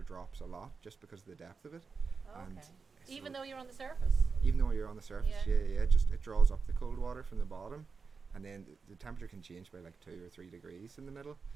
drops a lot just because of the depth of it. Oh, And okay. so Even though you're on the surface. even though you're on the surface, Yeah. it draws up the cold water from the bottom, and then the temperature can change by like 2 or 3 degrees in the middle.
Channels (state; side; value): quieter; left; 5.0 dB